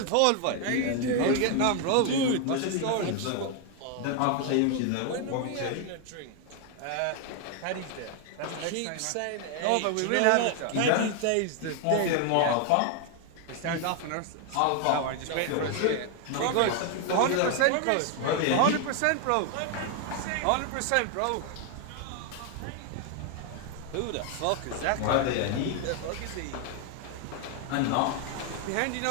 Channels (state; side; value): different; both; correlation 0.01